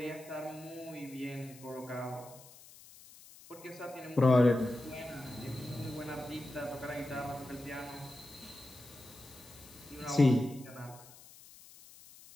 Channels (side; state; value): left; noise; hiss, 20 dB below the sound